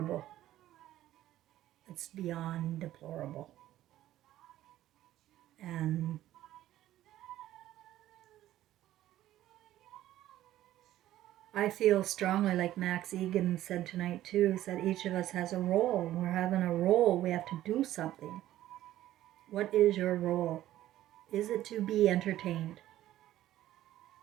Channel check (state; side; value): quieter; left; 13.8 dB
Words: It's beyond deplorable. And I feel strongly, like Max Egan said tonight too, is that each of us has a role. We're having a role. We have to do something. What is your role? Is it to be entertained?